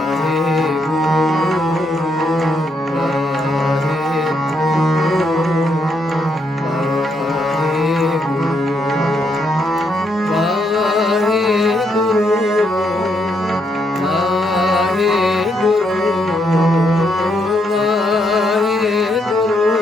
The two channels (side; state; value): both; normal; correlation 0.76